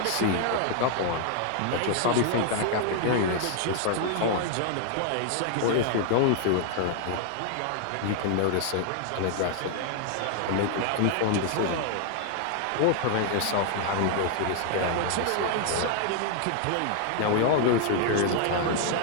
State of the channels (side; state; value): both; different; correlation 0.00